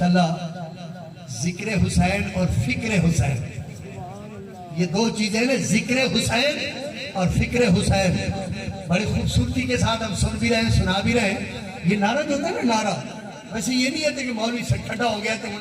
ذکر حسین اور فکر حسین، یہ دو چیزیں نا، ذکر حسین اور فکر حسین، بڑی خوبصورتی کے ساتھ ہم سن بھی رہے ہیں، سنا بھی رہے ہیں۔ یہ نعرہ جو ہوتا ہے نا، نعرہ ویسے یہ نہیں ہے کہ مولوی سے ٹھنڈا ہو گیا تو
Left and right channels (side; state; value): both; identical; correlation 1.00